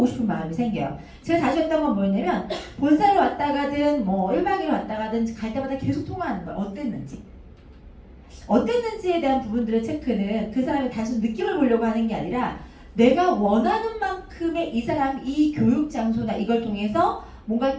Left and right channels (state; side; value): identical; both; correlation 1.00